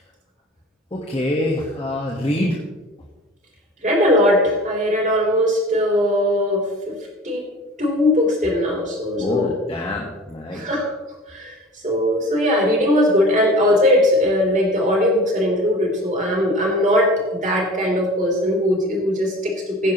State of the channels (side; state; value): both; normal; correlation 0.41